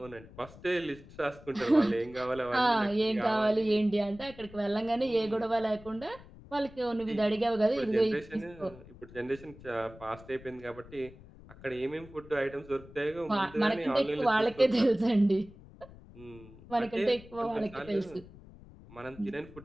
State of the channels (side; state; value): left; noise; rumble, 19 dB below the sound